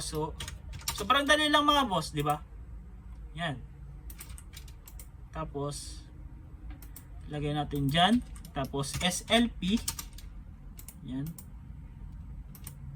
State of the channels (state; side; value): identical; both; correlation 1.00